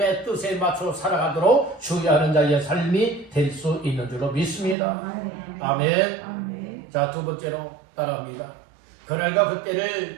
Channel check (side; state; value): left; drops out; at 4.8 s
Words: 뜻에 맞춰 살아가도록 주의하는 자의 삶이 될 수 있는 줄로 믿습니다. 아멘. 자, 두 번째로 따라합니다. 그날과